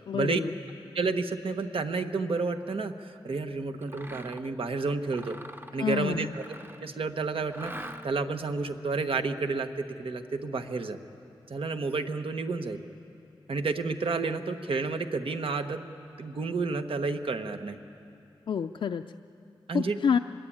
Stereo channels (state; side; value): normal; both; correlation 0.62